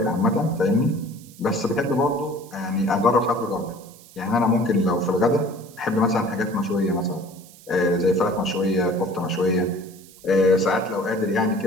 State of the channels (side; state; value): right; noise; hiss, 23 dB below the sound